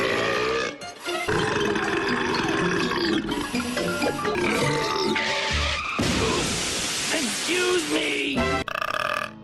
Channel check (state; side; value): identical; both; correlation 1.00